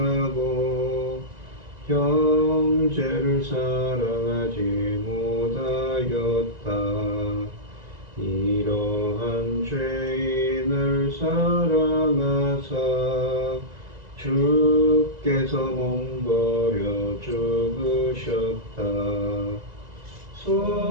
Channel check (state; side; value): late; left; 1.9 ms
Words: 형제를 사랑하지 못하였다. 이러한 죄인을 사랑하사 주께서 몸버려 죽으셨다.